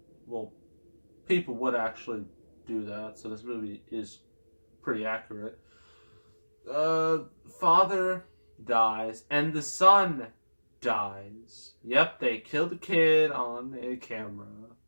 well, people would actually do that. So this movie is pretty accurate. Father dies, and the son dies. Yep, they killed the kid on a camera.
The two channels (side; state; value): both; inverted; correlation -1.00